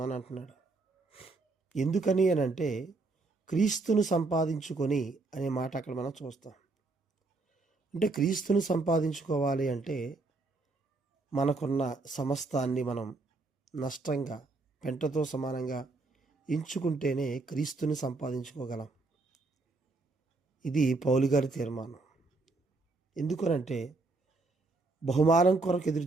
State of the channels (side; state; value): left; quieter; 3.5 dB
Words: అంటున్నాడు. ఎందుకని అని అంటే క్రీస్తుని సంపాదించుకొని అనే మాట అక్కడ మనం చూస్తాం. అంటే క్రీస్తుని సంపాదించుకోవాలి అంటే మనకున్న సమస్తాన్ని మనం నష్టంగా పెంటతో సమానంగా ఎంచుకుంటేనే క్రీస్తుని సంపాదించుకోగలం. ఇది పౌలు గారి తీర్మానం. ఎందుకనంటే బహుమానం కొరకు ఎదురు